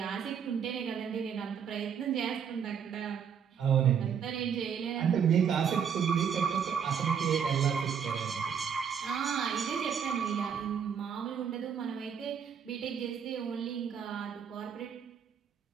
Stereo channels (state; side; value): quieter; left; 7.5 dB